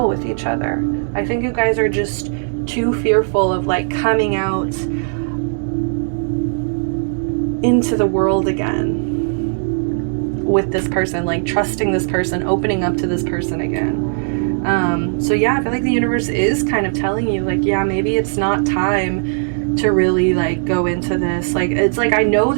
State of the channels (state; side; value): silent; left; digital silence